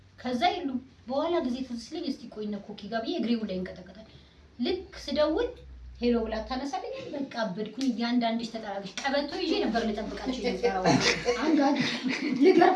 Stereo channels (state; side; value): identical; both; correlation 1.00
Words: ከዛ ይሉ በኋላ ጊዜ ተስለኝ እስቲ ቆይና ኮኪ ጋር ብዬ እግሬው ላይ እንቀጠቀጣል። ልክ ስደውል ሄሎ ብላ ታነሳለኝ። በቃ አበድኩኝ። ያንዳንድሽ ተጠራግሽ ቀበቶ ይዤ ነበር ልጠብቃቸው ይዘራው አንጋድ